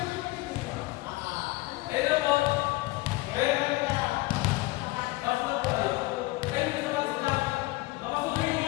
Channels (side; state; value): right; quieter; 20.9 dB